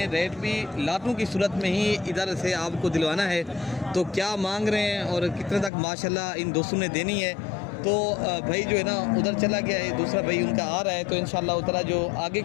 रेट भी लाटों की सूरत में ही इधर से आपको दिलवाना है। तो क्या मांग रहे हैं और कितने तक माशाल्लाह इन दोस्तों ने देनी है, तो भाई जो है ना उधर चला गया है, दूसरा भाई उनका आ रहा है, तो इंशाल्लाह उतना जो आगे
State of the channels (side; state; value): right; drops out; at 5.7 s